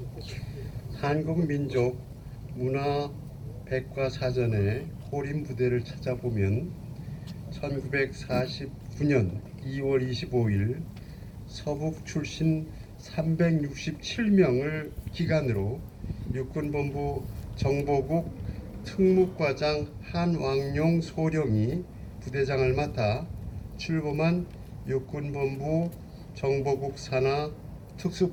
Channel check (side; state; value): both; identical; correlation 1.00